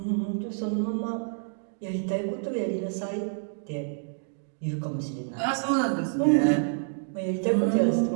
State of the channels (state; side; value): silent; left; digital silence